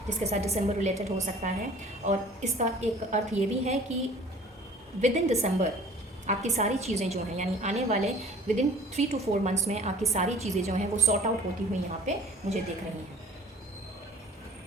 जिसके साथ दिसंबर रिलेटेड हो सकता है। और इसका एक अर्थ ये भी है कि विद इन दिसंबर आपकी सारी चीज़ें जो हैं, यानी आने वाले विद इन 3 to 4 मंथ्स में आपकी सारी चीज़ें जो हैं वो सॉर्ट आउट होती हुई यहाँ पे मुझे दिख रही हैं।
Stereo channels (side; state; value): both; normal; correlation 0.49